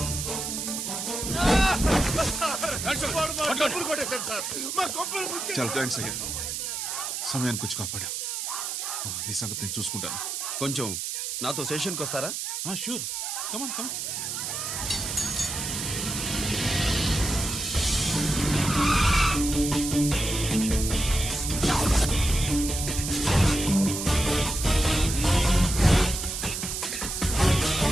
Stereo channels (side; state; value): right; noise; hiss, 4 dB below the sound